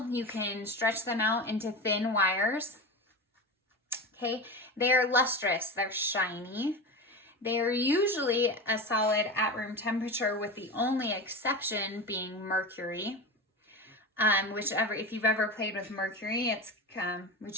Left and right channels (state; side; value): normal; both; correlation 0.25